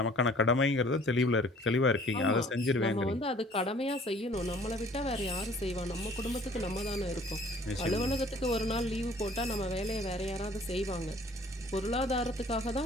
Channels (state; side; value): normal; both; correlation 0.53